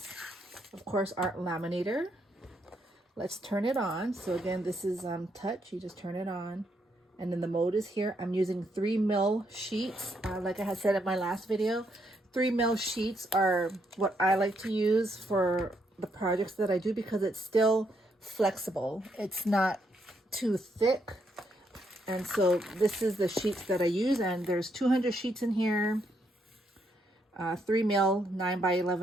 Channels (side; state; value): both; normal; correlation 0.76